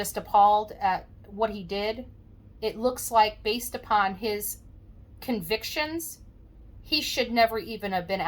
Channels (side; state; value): both; identical; correlation 1.00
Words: appalled at what he did. It looks like, based upon his convictions, he should never even have been